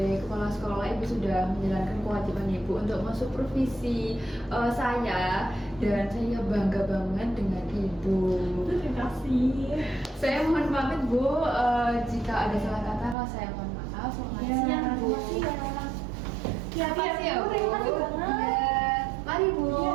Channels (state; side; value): drops out; left; at 13.2 s